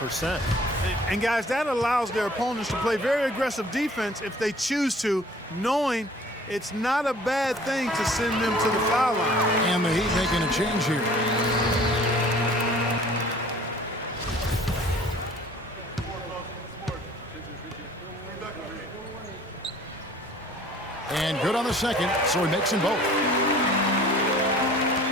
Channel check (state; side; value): normal; both; correlation 0.51